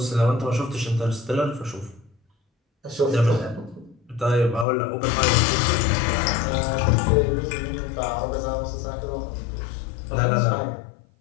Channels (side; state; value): right; drops out; at 4.7 s